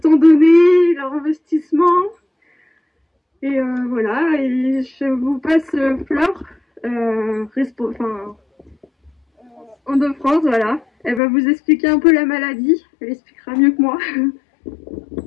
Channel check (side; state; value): right; drops out; at 11.2 s